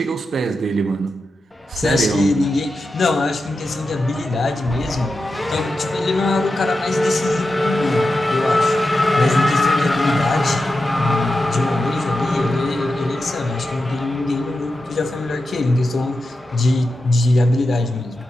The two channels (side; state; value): both; normal; correlation 0.90